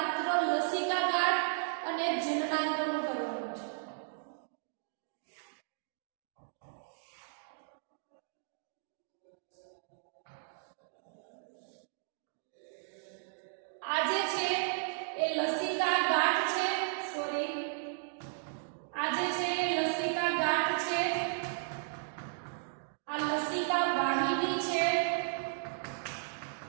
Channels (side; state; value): left; silent; digital silence